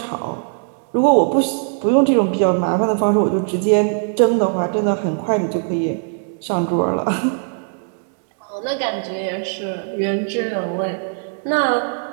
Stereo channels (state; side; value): silent; left; digital silence